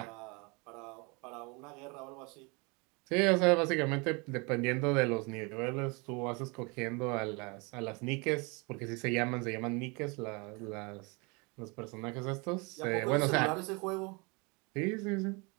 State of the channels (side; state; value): left; quieter; 29.5 dB